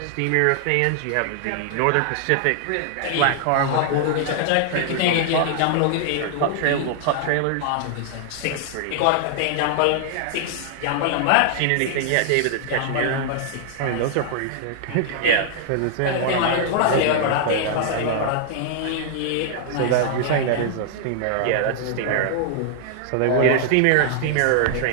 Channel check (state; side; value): different; both; correlation -0.01